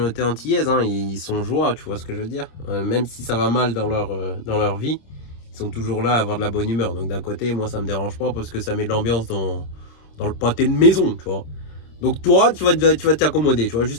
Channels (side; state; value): right; late; 27 ms